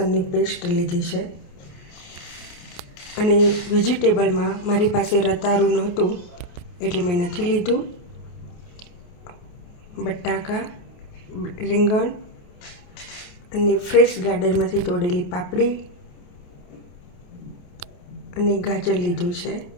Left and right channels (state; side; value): late; right; 28 ms